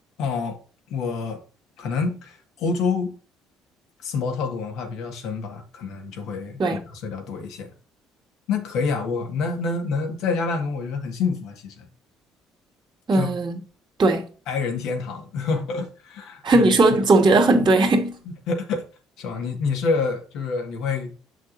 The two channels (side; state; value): both; normal; correlation 0.64